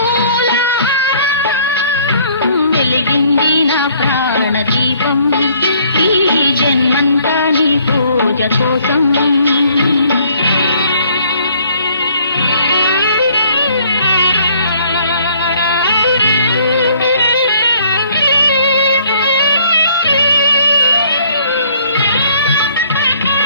వెలిగింది నా ప్రాణదీపం ఈ జన్మంతా నీ పూజ కోసం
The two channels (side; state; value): both; inverted; correlation -0.61